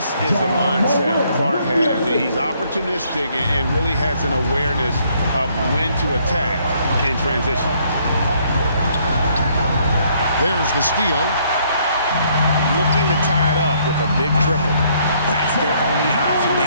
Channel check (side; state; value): both; inverted; correlation -0.67